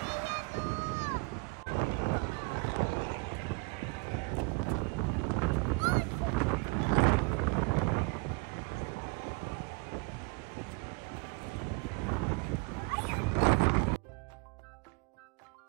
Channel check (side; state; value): left; quieter; 28.3 dB